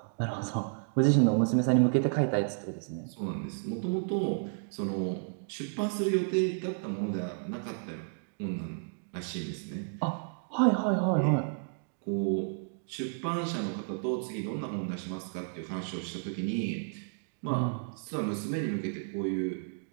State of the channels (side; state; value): left; silent; digital silence